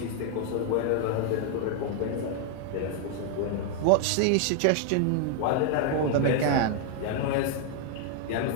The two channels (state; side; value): different; both; correlation 0.00